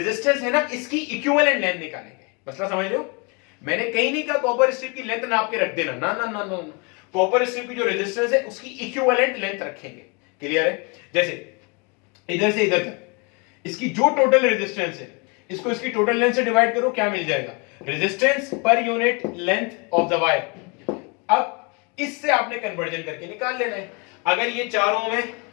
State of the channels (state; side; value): quieter; right; 31.2 dB